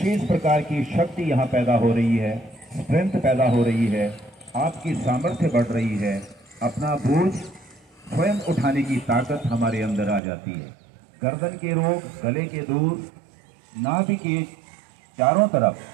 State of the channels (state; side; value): drops out; left; at 10.2 s